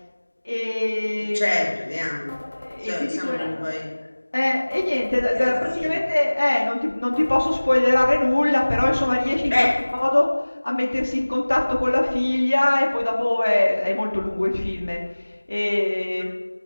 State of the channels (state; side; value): inverted; both; correlation -1.00